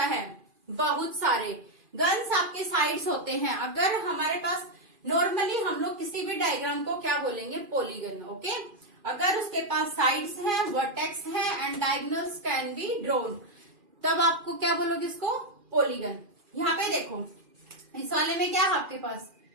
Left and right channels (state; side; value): late; left; 2.5 ms